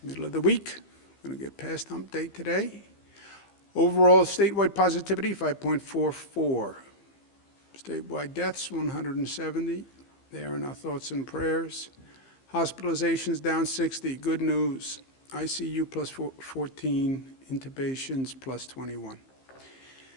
middle of the week. We're going to get past hump day today. Overall statewide positivity, 5.44. Statewide deaths, 170. They are in our thoughts and prayers. Hospitalizations down 60. Good news. ICU plus 14. Intubations plus 21.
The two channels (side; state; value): right; late; 15 ms